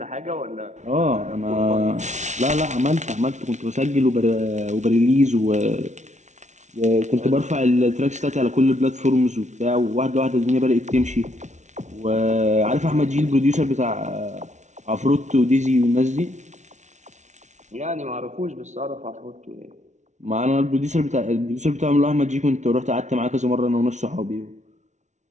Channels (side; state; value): left; late; 0.34 ms